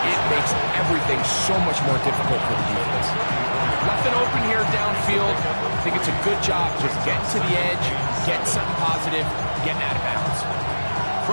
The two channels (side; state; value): both; inverted; correlation -1.00